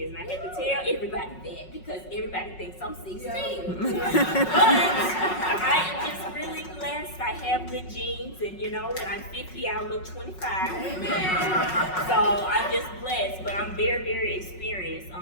and I had to tell everybody that because everybody thinks I'm 16. But I am just really blessed. I have good genes, and when I'm 50, I look 25. Amen. So I'm just blessed, but I'm very, very experienced.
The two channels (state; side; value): late; right; 5.4 ms